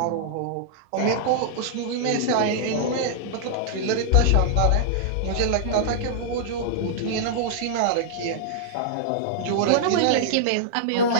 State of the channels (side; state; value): both; different; correlation -0.01